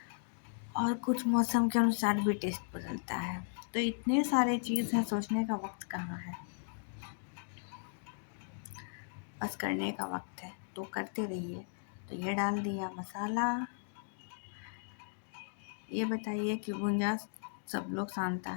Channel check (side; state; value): right; silent; digital silence